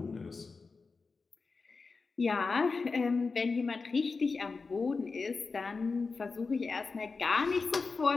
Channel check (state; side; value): quieter; right; 4.3 dB